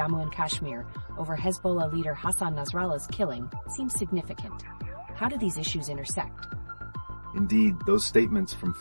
and Kashmir over Hezbollah leader Hassan Nasrallah's killing seems significant. How do these issues intersect? Indeed, those statements from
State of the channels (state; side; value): inverted; both; correlation -1.00